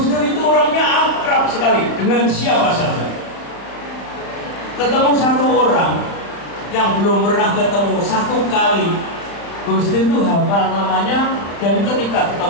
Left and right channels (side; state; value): right; late; 35 ms